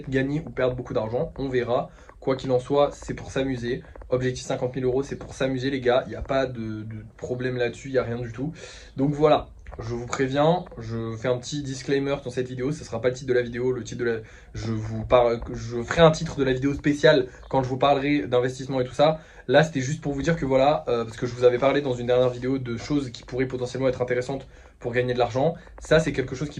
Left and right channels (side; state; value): both; identical; correlation 1.00